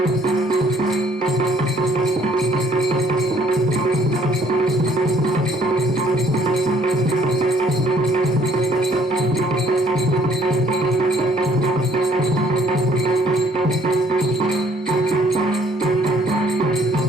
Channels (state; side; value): normal; both; correlation 0.62